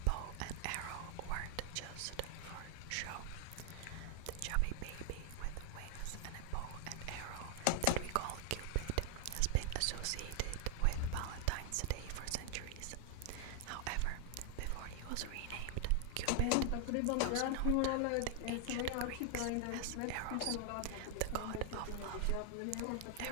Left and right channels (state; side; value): different; both; correlation 0.00